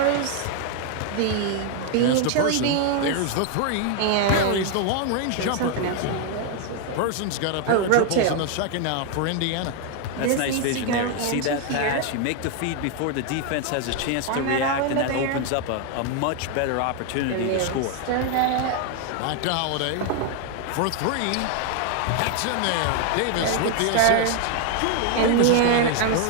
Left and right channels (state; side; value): different; both; correlation 0.01